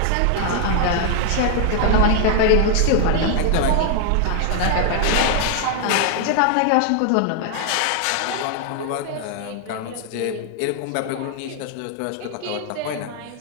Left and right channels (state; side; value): different; both; correlation 0.00